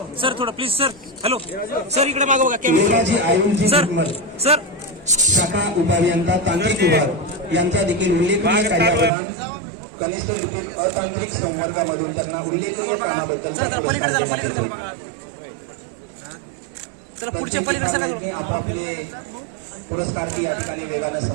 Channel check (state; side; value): drops out; left; at 9.1 s